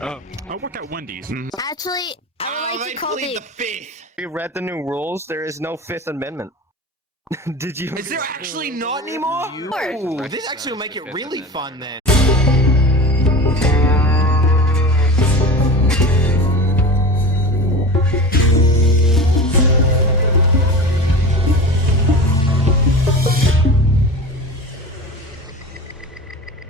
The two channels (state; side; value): normal; both; correlation 0.32